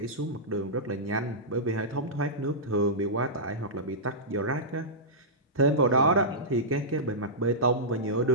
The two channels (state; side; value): normal; both; correlation -0.15